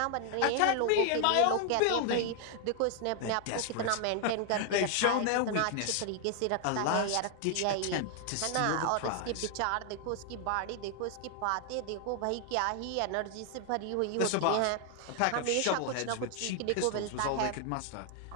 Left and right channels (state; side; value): different; both; correlation 0.00